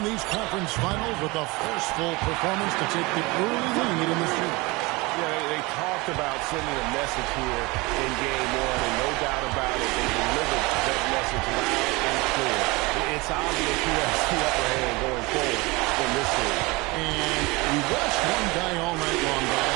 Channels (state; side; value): quieter; left; 24.3 dB